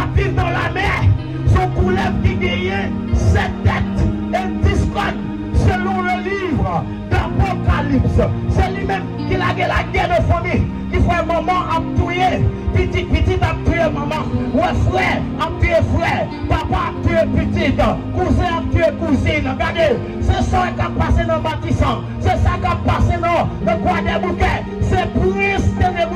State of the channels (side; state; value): both; identical; correlation 1.00